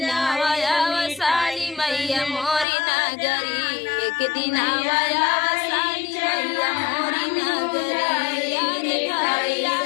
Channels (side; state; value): right; drops out; at 2.7 s